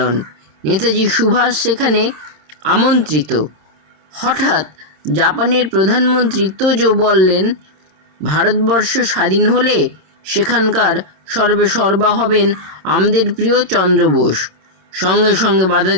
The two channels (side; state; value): left; late; 26 ms